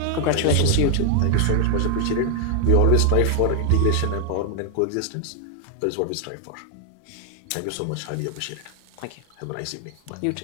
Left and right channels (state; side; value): different; both; correlation 0.00